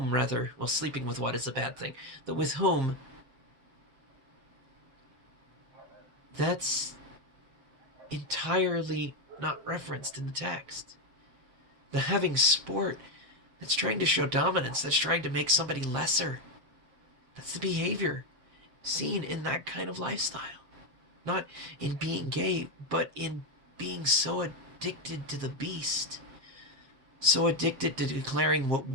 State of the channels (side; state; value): left; late; 7.6 ms